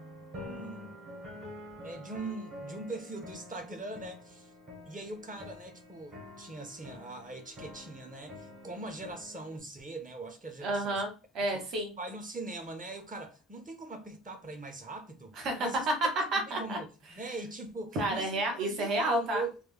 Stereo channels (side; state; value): both; normal; correlation 0.46